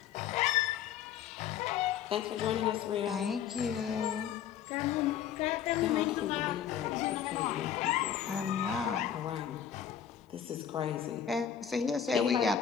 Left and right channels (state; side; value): quieter; right; 9.0 dB